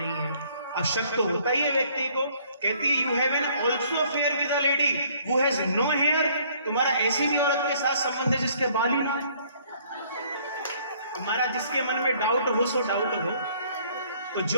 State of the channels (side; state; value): both; inverted; correlation -0.61